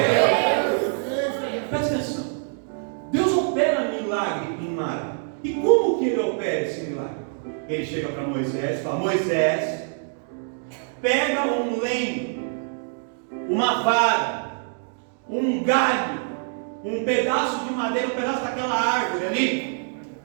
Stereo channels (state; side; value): silent; left; 61 dB below the other